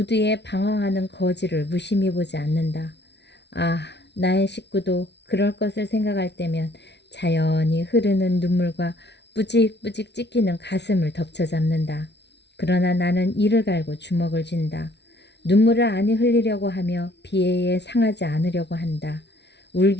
방황하는 거지를 무심히 보지 않는다. 아, 나의 식구도 그럴 것을 생각할 때면 자연히 흐르는 눈물과 뿌직뿌직 찢기는 가슴을 덮쳐잡는다. 그러나 나는 이를 갈고 주먹을 쥔다. 눈물을 아니 흘리려고 하며 비애에 상하지 않으려고 한다.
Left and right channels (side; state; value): right; late; 0.50 ms